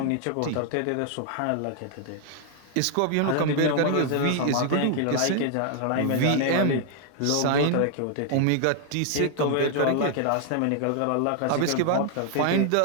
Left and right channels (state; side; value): different; both; correlation 0.00